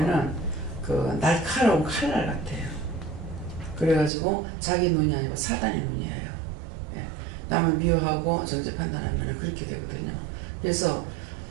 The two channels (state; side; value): drops out; left; at 4.1 s